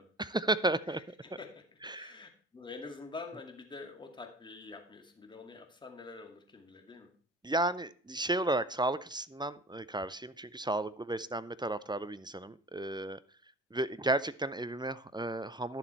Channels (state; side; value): normal; both; correlation 0.40